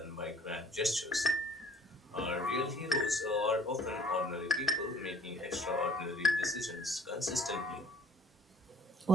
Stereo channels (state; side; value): normal; both; correlation 0.54